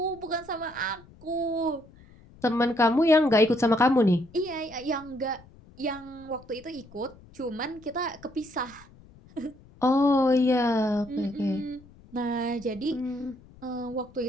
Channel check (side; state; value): left; noise; rumble, 24 dB below the sound